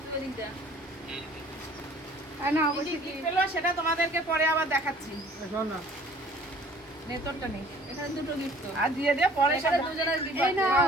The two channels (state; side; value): normal; both; correlation 0.53